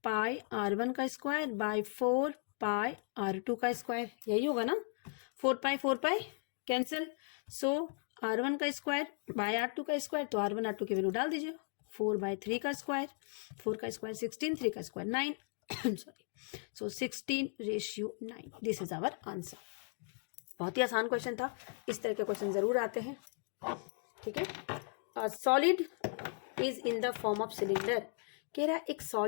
pi r1 का स्क्वायर बाय 4 पाई r2 का स्क्वायर, यही होगा ना। 4 पाई कैंसिल, सो r1 का स्क्वायर बाय r2 का स्क्वायर, तो r1 r2 की वैल्यू डाल दीजिए। 4/3 का स्क्वायर, 4 का स्क्वायर 16, 3 का square 9 sorry, so 16:9। This is our answer. बहुत ही आसान क्वेश्चन था, इस तरह के क्वेश्चन जरूर आते हैं। ठीक है, solid is in the form of cylinder, कह रहा है एक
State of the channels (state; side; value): silent; right; 53 dB below the other